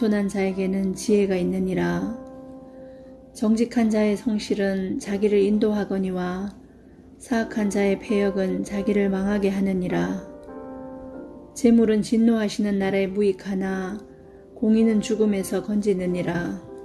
자에게는 지혜가 있느니라. 정직한 자의 성실은 자기를 인도하거니와 사악한 자의 패역은 자기를 망하게 하느니라. 재물은 진노하시는 나라에 무익하나 공의는 죽음에서 건지느니라.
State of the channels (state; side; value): identical; both; correlation 1.00